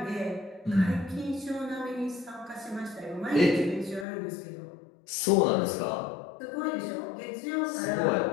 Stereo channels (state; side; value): drops out; right; at 4.0 s